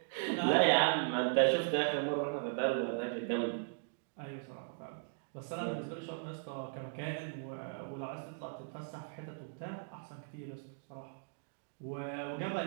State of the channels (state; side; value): silent; left; digital silence